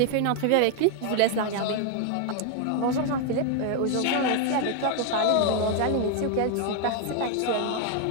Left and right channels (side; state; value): both; different; correlation 0.01